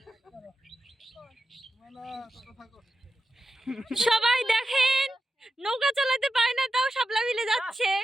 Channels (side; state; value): both; normal; correlation 0.90